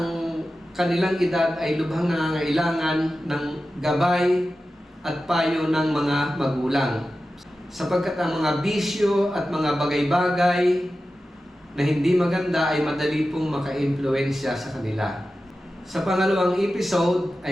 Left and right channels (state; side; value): normal; both; correlation 0.93